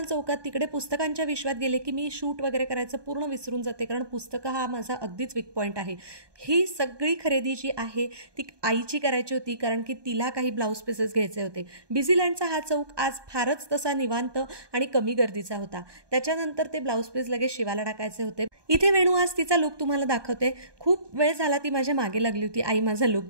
चौकात. तिकडे पुस्तकांच्या विश्वात गेले की मी शूट वगैरे करायचं पूर्ण विसरून जाते, कारण पुस्तकं हा माझा अगदीच वीक पॉईंट आहे. ही सगळी खरेदी जी आहे ती आईची करायची होती, कारण की तिला काही ब्लाऊज पीसेस घ्यायचे होते. बिझीलँडचा हा चौक आज फारच तसा निवांत आणि कमी गर्दीचा होता. त्याच्यानंतर ते ब्लाऊज पीस लगेच शिवायला टाकायचे होते. इथे वेणू आज तिचा लुक तुम्हाला दाखवते. खूप वेळ झाला ती माझ्या मागे लागली होती, आई माझा लुक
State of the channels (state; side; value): late; left; 1.2 ms